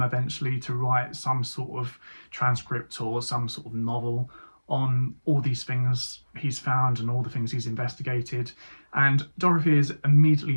eventually to write some sort of transcript or some sort of novel on all these things he's found and all the things he's investigated. And Dorothy is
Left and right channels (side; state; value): both; inverted; correlation -1.00